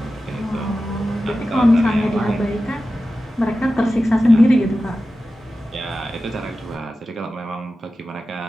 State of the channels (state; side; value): normal; both; correlation 0.94